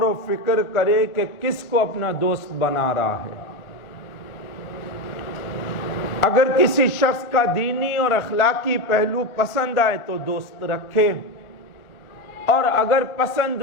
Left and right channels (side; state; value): right; late; 1.4 ms